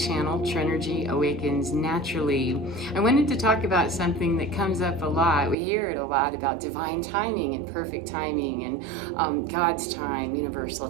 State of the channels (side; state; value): left; drops out; at 5.6 s